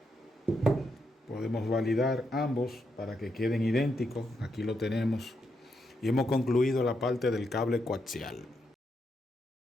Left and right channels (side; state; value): both; normal; correlation 0.81